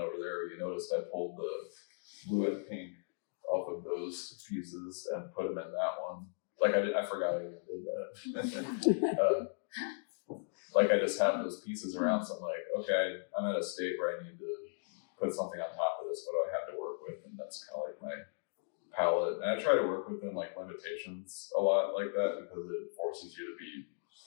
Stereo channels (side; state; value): right; silent; digital silence